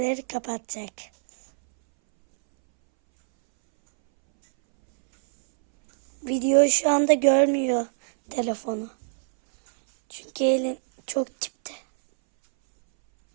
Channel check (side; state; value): left; silent; 63 dB below the other